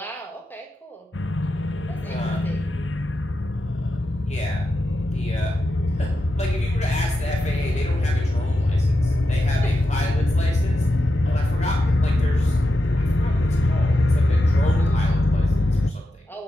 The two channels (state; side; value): normal; both; correlation 0.88